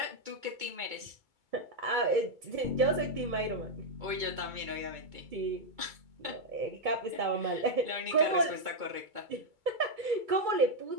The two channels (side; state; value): left; late; 2.2 ms